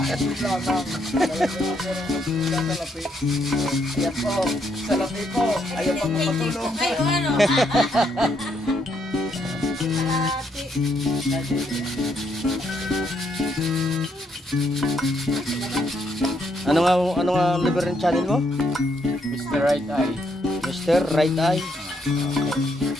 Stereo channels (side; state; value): both; normal; correlation 0.74